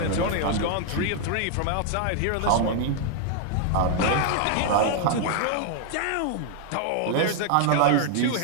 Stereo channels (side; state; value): both; different; correlation 0.00